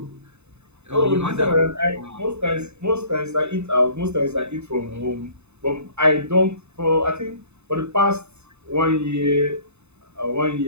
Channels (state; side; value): late; left; 0.81 ms